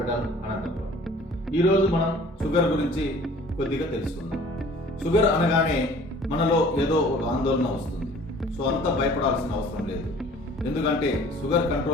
Anantapur. ఈరోజు మనం షుగర్ గురించి కొద్దిగా తెలుసుకుందాం. షుగర్ అనగానే మనలో ఏదో ఒక ఆందోళన వస్తుంది. సో అంత భయపడాల్సిన అవసరం లేదు. ఎందుకంటే షుగర్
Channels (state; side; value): normal; both; correlation 0.50